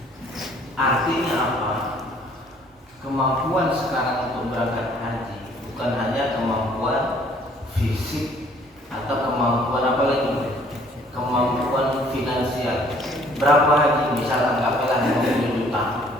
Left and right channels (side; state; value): both; normal; correlation 0.59